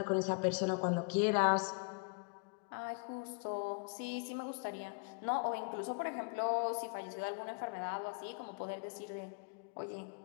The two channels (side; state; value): right; quieter; 34.9 dB